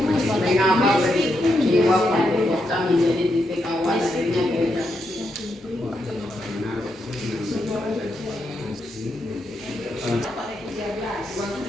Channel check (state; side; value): normal; both; correlation 0.82